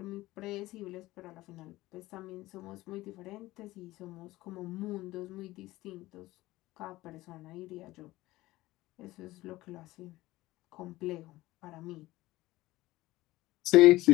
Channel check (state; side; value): quieter; right; 18.0 dB